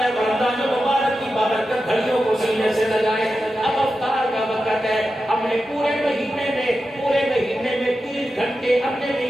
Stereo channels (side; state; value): both; normal; correlation 0.91